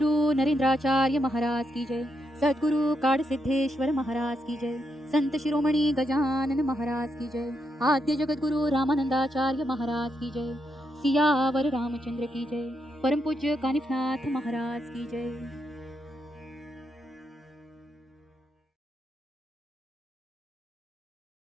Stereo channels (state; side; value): normal; both; correlation 0.82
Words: नरेंद्राचार्य महाराज की जय। सद्गुरु काड़ सिद्धेश्वर महाराज की जय। संत शिरोमणि गजानन महाराज की जय। आद्य जगत गुरु रामानंदाचार्य महाराज की जय। सियावर रामचंद्र की जय। परम पूज्य कानिफनाथ महाराज की जय।